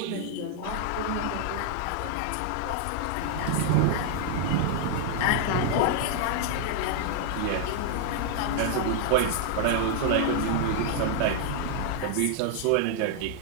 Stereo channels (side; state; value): both; different; correlation 0.00